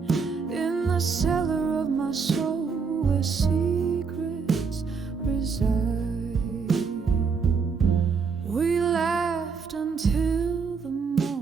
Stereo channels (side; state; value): left; quieter; 5.3 dB